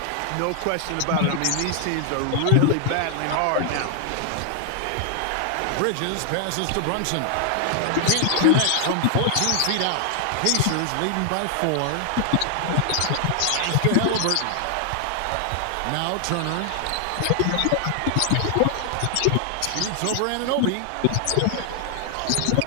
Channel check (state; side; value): different; both; correlation 0.00